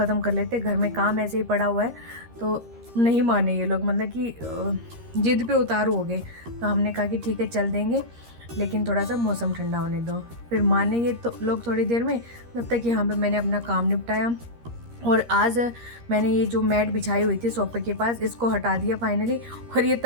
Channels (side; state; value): left; late; 13 ms